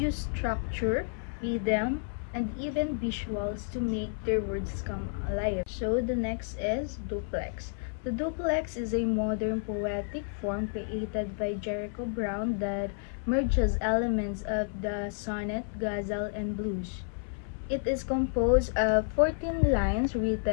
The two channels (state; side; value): silent; right; 57 dB below the other